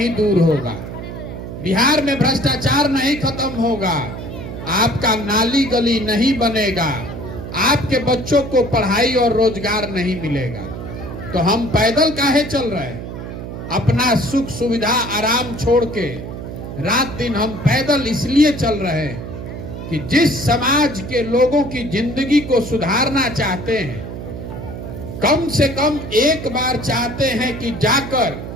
दूर होगा, बिहार में भ्रष्टाचार नहीं खत्म होगा, आपका नाली गली नहीं बनेगा, आपके बच्चों को पढ़ाई और रोजगार नहीं मिलेगा। तो हम पैदल काहे चल रहे हैं? अपना सुख सुविधा आराम छोड़ के रात दिन हम पैदल इसलिए चल रहे हैं कि जिस समाज के लोगों की जिंदगी को सुधारना चाहते हैं, कम से कम एक बार चाहते हैं कि जाकर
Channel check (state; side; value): noise; right; hum, 9 dB below the sound